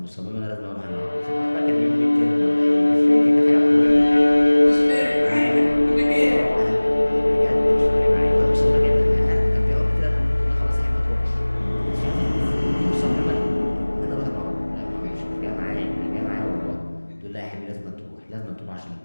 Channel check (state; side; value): inverted; both; correlation -1.00